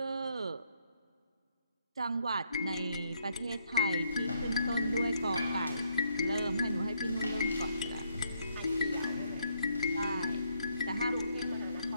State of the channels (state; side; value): inverted; both; correlation -0.73